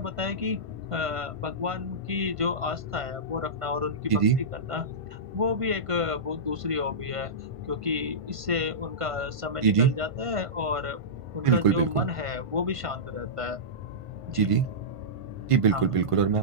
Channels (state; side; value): late; left; 1.5 ms